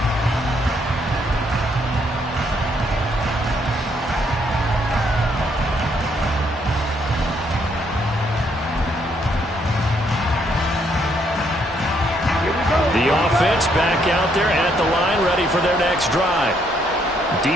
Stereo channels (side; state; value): both; normal; correlation 0.71